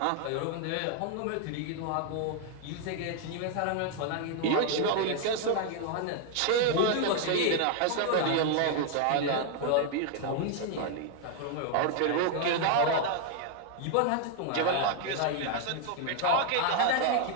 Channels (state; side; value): different; both; correlation 0.00